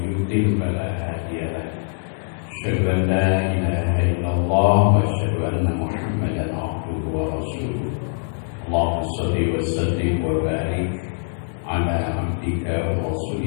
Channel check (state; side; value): silent; right; digital silence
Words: yudlil fala hadiya lahu. Asyhadu an la ilaha illallah wa asyhadu anna Muhammadan abduhu wa rasuluh. Allahumma shalli wa sallim wa barik ala abdika wa